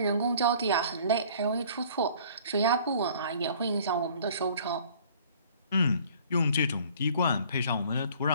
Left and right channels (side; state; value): both; inverted; correlation -0.52